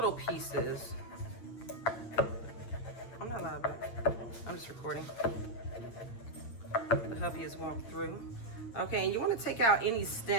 pieces. I'm not live back. I'm just recording. The hubby has walked through. Okay, and you want to take out any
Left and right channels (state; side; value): late; right; 8.5 ms